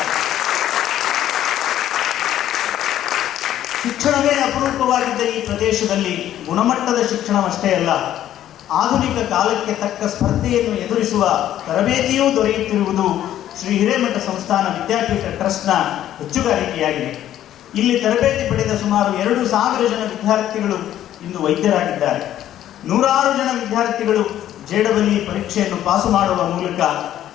ಶಿಕ್ಷಣವೇ ಅಪರೂಪವಾಗಿದ್ದ ಈ ಪ್ರದೇಶದಲ್ಲಿ ಗುಣಮಟ್ಟದ ಶಿಕ್ಷಣವಷ್ಟೇ ಅಲ್ಲ, ಆಧುನಿಕ ಕಾಲಕ್ಕೆ ತಕ್ಕ ಸ್ಪರ್ಧೆಯನ್ನು ಎದುರಿಸುವ ತರಬೇತಿಯೂ ದೊರೆಯುತ್ತಿರುವುದು ಶ್ರೀ ಹಿರೇಮಠ ಸಂಸ್ಥಾನ ವಿದ್ಯಾಪೀಠ ಟ್ರಸ್ಟ್ನ ಹೆಚ್ಚುಗಾರಿಕೆಯಾಗಿದೆ. ಇಲ್ಲಿ ತರಬೇತಿ ಪಡೆದ ಸುಮಾರು 2,000 ಜನ ವಿದ್ಯಾರ್ಥಿಗಳು ಇಂದು ವೈದ್ಯರಾಗಿದ್ದಾರೆ. 100 ಜನ ವಿದ್ಯಾರ್ಥಿಗಳು JEE ಪರೀಕ್ಷೆಯನ್ನು ಪಾಸು ಮಾಡುವ ಮೂಲಕ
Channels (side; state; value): right; quieter; 11.9 dB